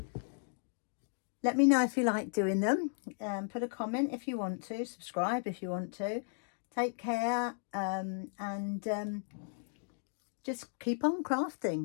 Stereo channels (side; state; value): right; silent; digital silence